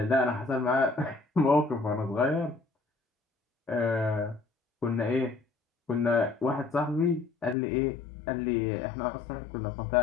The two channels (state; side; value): drops out; right; at 7.6 s